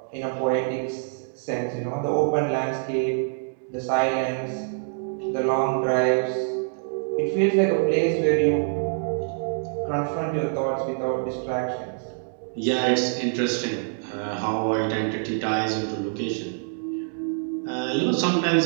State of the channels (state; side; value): silent; left; digital silence